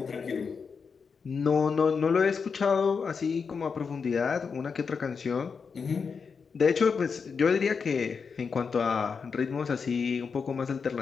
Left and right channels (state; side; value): quieter; right; 5.6 dB